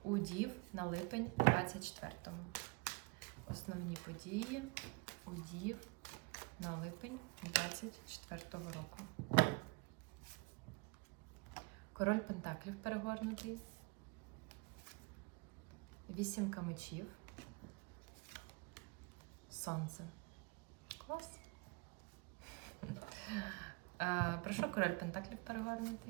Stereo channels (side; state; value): left; quieter; 28.3 dB